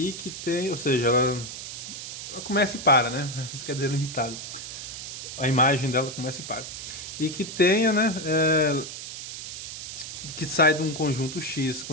que tem, ou seja, ela começa e para, né? Isso quer dizer limitado. A imagem dela começa e para. E que tenha, né? Que sai de um conjunto X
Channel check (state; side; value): noise; right; hiss, 9 dB below the sound